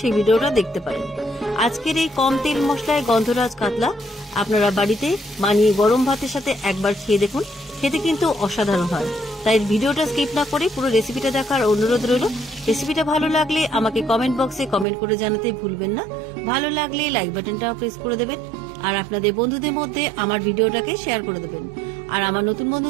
ভিডিওটা দেখতে পারেন। আজকের এই কম তেল মশলায় গন্ধরাজ কাতলা আপনারা বাড়িতে বানিয়ে গরম ভাতের সাথে একবার খেয়ে দেখুন, খেতে কিন্তু অসাধারণ হয়। তাই ভিডিওটা স্কিপ না করে পুরো রেসিপিটা দেখার অনুরোধ রইল। রেসিপিটা ভালো লাগলে আমাকে কমেন্ট বক্সে কমেন্ট করে জানাতে ভুলবেন না। ভালো লাগলে লাইক বাটনটা প্রেস করে দেবেন আর আপনাদের বন্ধুদের মধ্যে আমার ভিডিওটাকে শেয়ার করে দেবেন। আর আমার নতুন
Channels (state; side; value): drops out; left; at 14.9 s